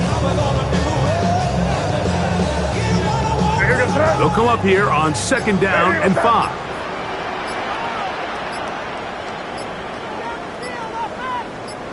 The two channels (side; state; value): both; identical; correlation 1.00